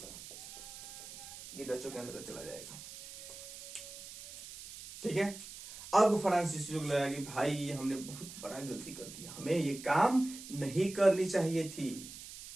ये डचों के अंदर चला जाएगा। ठीक है, अब फ्रांसीसियों को लगा कि भाई हमने बहुत बड़ा गलती कर दिया, हमें ये काम नहीं करनी चाहिए थी।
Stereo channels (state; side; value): noise; right; hiss, 13 dB below the sound